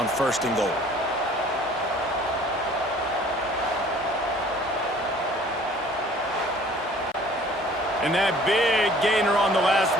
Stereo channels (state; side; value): normal; both; correlation 0.52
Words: first and goal. And that big gainer on the last